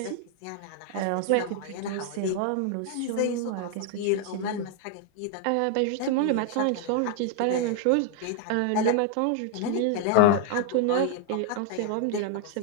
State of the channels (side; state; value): both; different; correlation 0.00